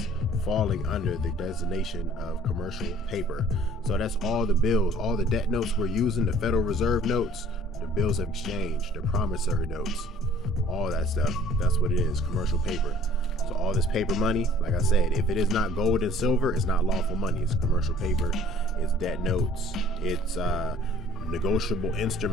falling under the designation of commercial paper. So that's all the bills, all the debt notes we're using, the Federal Reserve notes, the bills of exchange, the promissory notes, all that stuff. That's what it is, commercial paper. So all this paper money, like I said, if it is not gold and silver, it's not lawful money. It's commercial paper, it's debt notes, it's negotiable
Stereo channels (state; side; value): normal; both; correlation 0.54